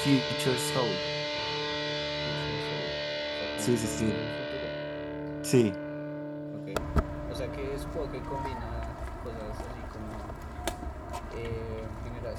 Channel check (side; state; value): both; identical; correlation 1.00